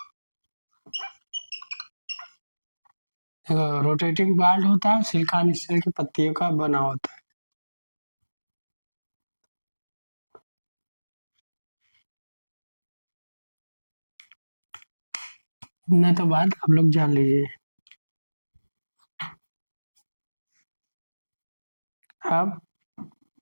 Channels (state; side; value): inverted; both; correlation -1.00